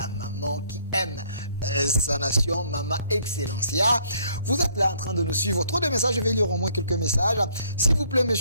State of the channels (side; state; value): both; inverted; correlation -0.64